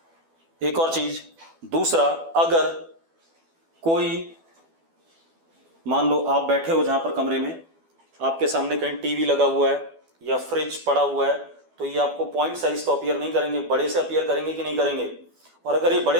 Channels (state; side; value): late; left; 12 ms